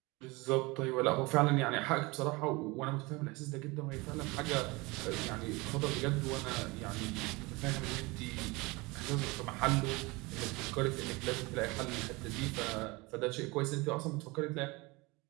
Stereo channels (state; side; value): quieter; left; 24.3 dB